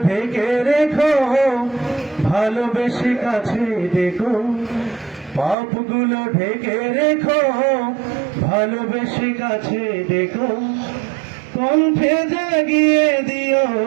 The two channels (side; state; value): left; drops out; at 5.6 s